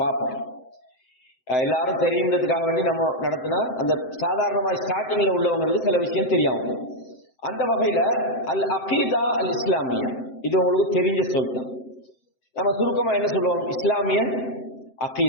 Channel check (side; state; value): right; late; 7.8 ms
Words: பார்ப்போம். எல்லாரும் தெரியுங்கிறதுக்காக வேண்டி நம்ம நடத்தினா அந்த சாதாரணமாக ஸ்டார்டிங்கில் உள்ளவங்களுக்கு சில விஷயம் தெரியாமல். அந்த வகையில் அல் அகீதா அல் இஸ்லாமியா இது உங்களுக்கு தெரிஞ்ச சொல்லிட்டோம். நம்ம சுருக்கமாக என்ன சொல்லுவோம், இஸ்லாமிய